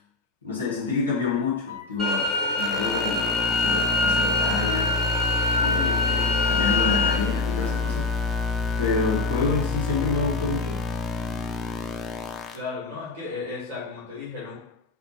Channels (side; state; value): right; quieter; 3.3 dB